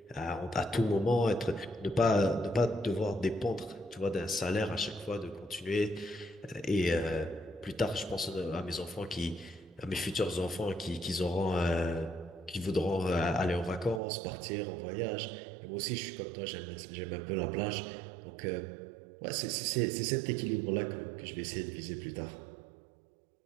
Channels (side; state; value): left; drops out; at 14.0 s